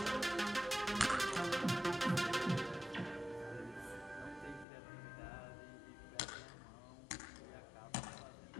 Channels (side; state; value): right; drops out; at 4.7 s